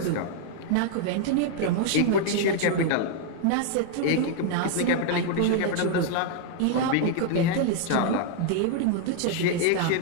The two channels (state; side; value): different; both; correlation 0.00